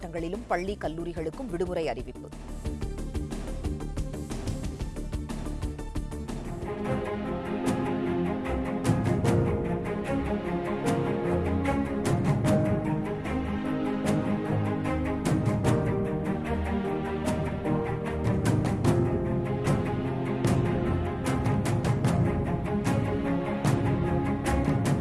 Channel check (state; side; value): identical; both; correlation 1.00